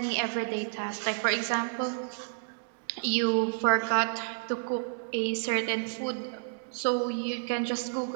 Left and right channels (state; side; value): silent; left; digital silence